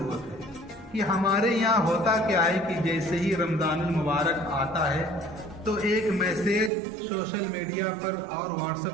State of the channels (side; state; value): left; drops out; at 6.7 s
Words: ہے کہ ہمارے یہاں ہوتا کیا ہے کہ جیسے ہی رمضان المبارک آتا ہے تو ایک میسیج سوشل میڈیا پر اور واٹس